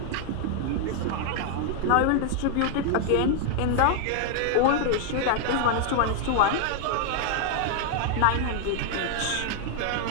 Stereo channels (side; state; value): both; different; correlation 0.00